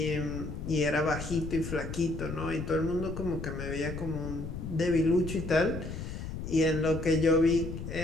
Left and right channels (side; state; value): left; noise; rumble, 7 dB below the sound